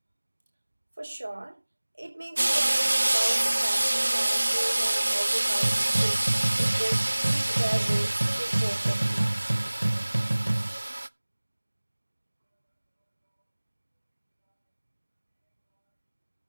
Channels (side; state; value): both; inverted; correlation -1.00